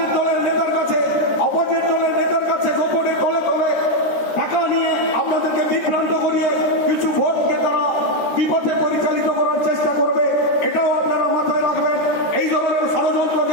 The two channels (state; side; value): late; right; 13 ms